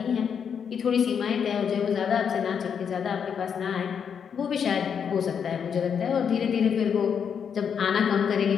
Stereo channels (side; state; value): right; quieter; 7.3 dB